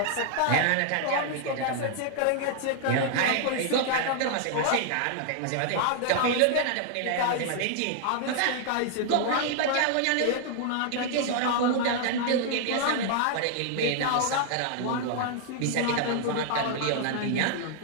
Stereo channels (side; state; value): both; different; correlation 0.00